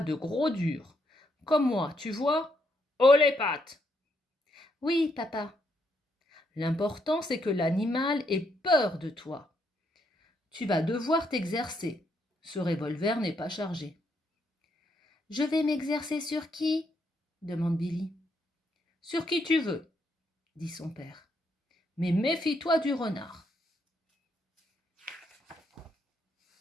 de gros dur. Comme moi, tu vois, « Oh les pattes !» Oui, papa. L'important, c'est que l'animal ait peur de toi. Tu vas devoir t'exercer. Ce revolver n'est pas chargé. Je vais m'exercer sur qui ? Demande Billy. Sur qui tu veux, dit son père. Mais méfie-toi du renard.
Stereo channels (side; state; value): both; normal; correlation 0.76